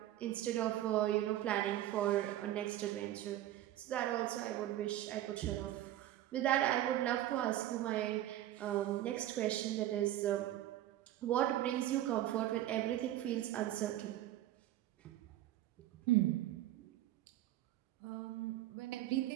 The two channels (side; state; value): left; quieter; 13.7 dB